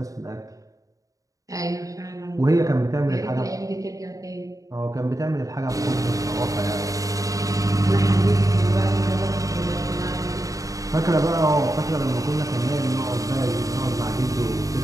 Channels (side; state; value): left; late; 0.16 ms